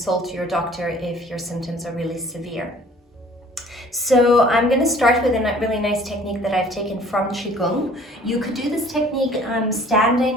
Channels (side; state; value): both; normal; correlation 0.53